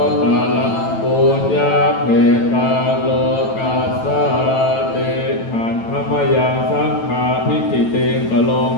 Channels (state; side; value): late; right; 9.1 ms